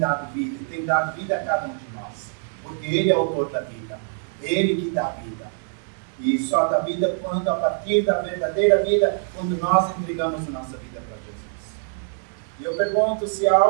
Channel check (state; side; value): silent; left; 62 dB below the other